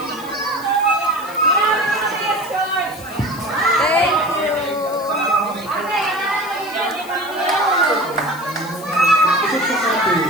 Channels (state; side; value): noise; left; hiss, 19 dB below the sound